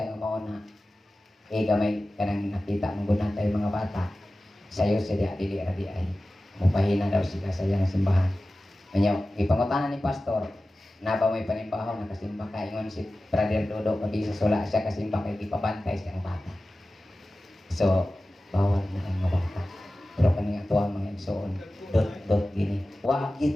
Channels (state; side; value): normal; both; correlation 0.95